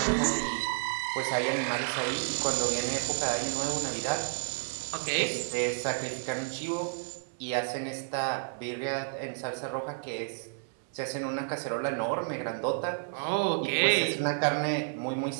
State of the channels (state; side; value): silent; left; digital silence